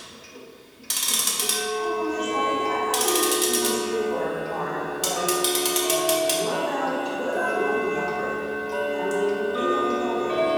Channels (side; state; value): both; identical; correlation 1.00